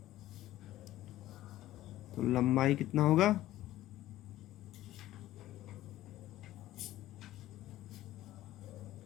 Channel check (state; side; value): quieter; right; 14.8 dB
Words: तो लंबाई कितना होगा